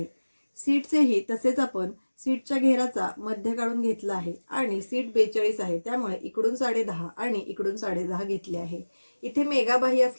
सीटचेही तसेच आपण सीटच्या घेराचा मध्य काढून घेतला आहे आणि सीट 42 आहे, त्यामुळे इकडून 10.5 आणि इकडून 10.5 घेतले आहे। इथे मेगा बाही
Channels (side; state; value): both; inverted; correlation -1.00